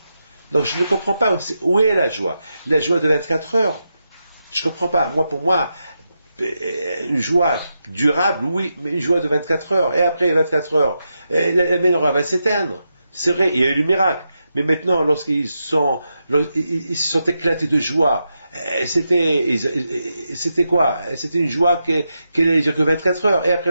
Donc je ne comprends pas. Où est la joie? La joie de 24 heures? Je ne comprends pas. Pour moi, une joie durable, oui, mais une joie de 24 heures. Et après 24 heures, la menorah va s'éteindre. C'est vrai, il y a eu le miracle. Mais maintenant, lorsqu'ils se sont éclatés de joie, c'était quoi? C'était une joie qui n'allait durer que 24 heures, et après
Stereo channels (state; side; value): inverted; both; correlation -0.86